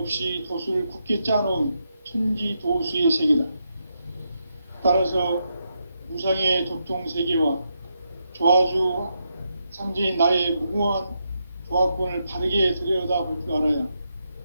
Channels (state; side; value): inverted; both; correlation -0.83